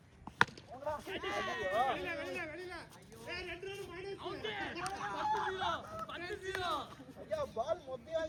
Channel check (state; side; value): identical; both; correlation 1.00